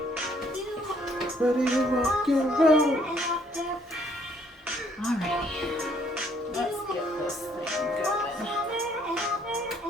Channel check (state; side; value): normal; both; correlation 0.65